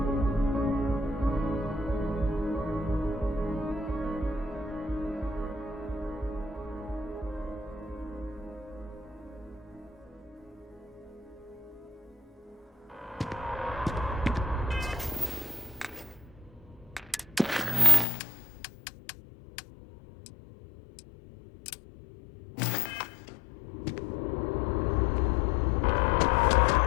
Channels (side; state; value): right; drops out; at 18.1 s